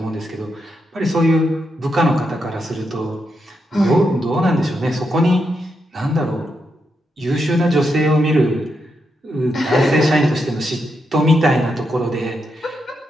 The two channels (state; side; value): normal; both; correlation 0.83